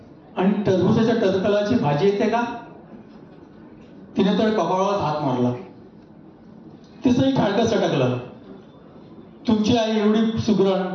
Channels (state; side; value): identical; both; correlation 1.00